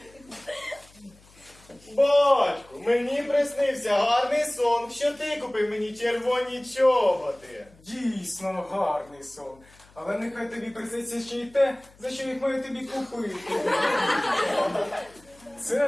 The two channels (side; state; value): left; noise; hum, 27 dB below the sound